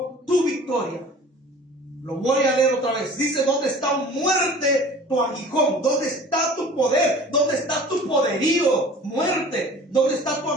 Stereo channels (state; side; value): normal; both; correlation 0.44